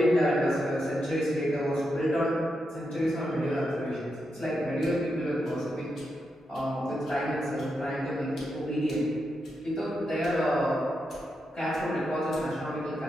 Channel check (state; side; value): normal; both; correlation 0.85